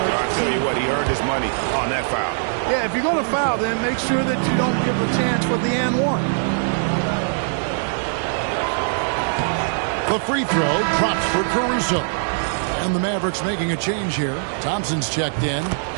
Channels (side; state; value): left; silent; 61 dB below the other